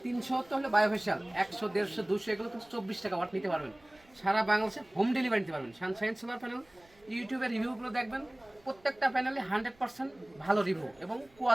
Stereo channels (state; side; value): noise; right; rumble, 30 dB below the sound